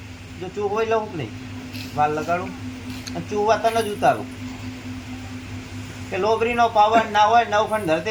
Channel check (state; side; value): identical; both; correlation 1.00